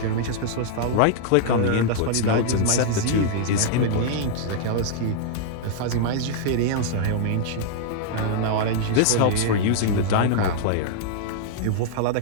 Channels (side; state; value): both; different; correlation -0.01